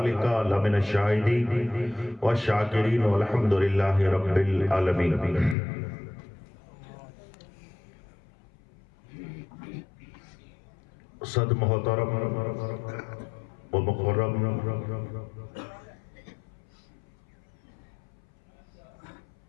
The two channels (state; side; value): drops out; right; at 5.6 s